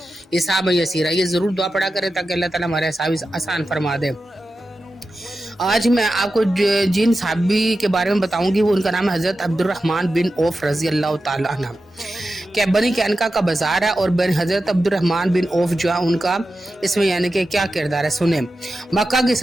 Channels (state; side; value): normal; both; correlation 0.92